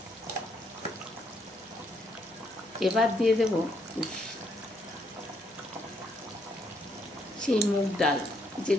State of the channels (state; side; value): normal; both; correlation 0.73